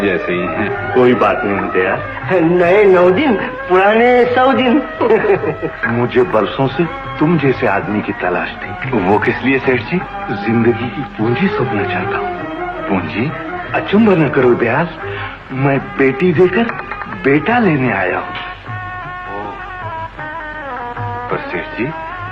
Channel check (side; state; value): both; identical; correlation 1.00